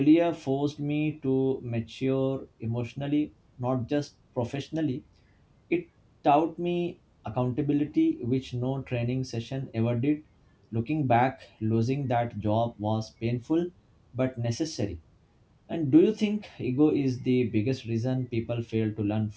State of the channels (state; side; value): identical; both; correlation 1.00